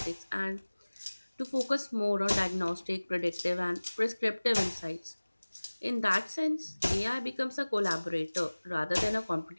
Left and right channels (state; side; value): inverted; both; correlation -1.00